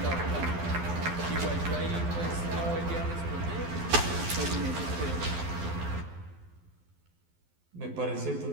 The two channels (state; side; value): late; left; 12 ms